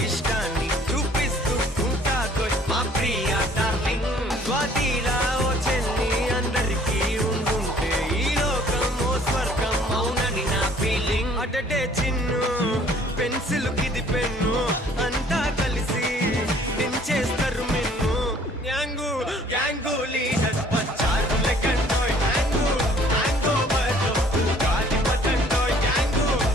ఇష్టాన్ని చూపిస్తూ ఉంటాదో మా ప్రియ డార్లింగ్ స్వాతిలా ఓ చెల్లి అందరికీ ఉండుంటే ఈ లోకం ఓ స్వర్గం అవునని నా ఫీలింగ్ అటటే చిన్ను పెన్సిల్ కిది పెన్ను అంతా కలిసి దించేస్తారు మెన్ను గ్యాంగు గ్యాంగు లీడర్ పంచారు లెక్కండోయ్ హ్యాంగు హ్యాంగ్ ఓవర్లో గాలి పట్టండోయ్ గ్యాంగు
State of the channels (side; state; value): both; normal; correlation 0.57